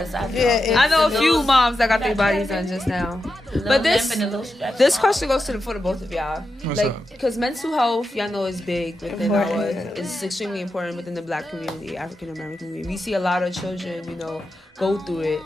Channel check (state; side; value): normal; both; correlation 0.89